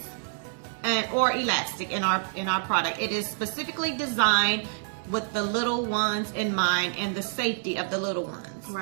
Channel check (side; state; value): left; silent; 59 dB below the other